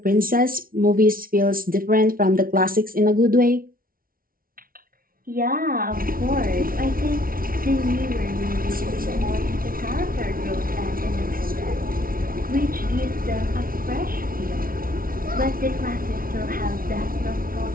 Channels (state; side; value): late; left; 0.42 ms